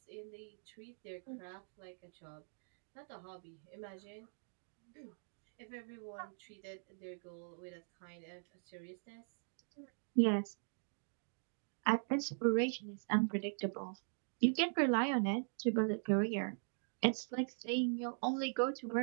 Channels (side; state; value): left; silent; digital silence